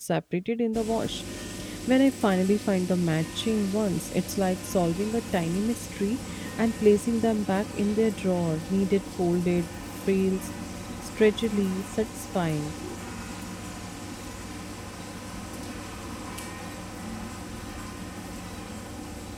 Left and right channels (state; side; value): identical; both; correlation 1.00